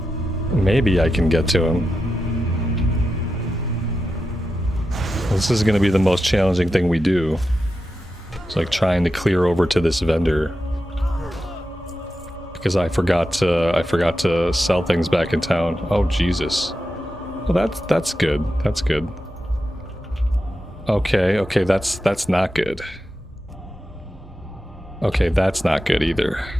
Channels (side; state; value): both; normal; correlation 0.90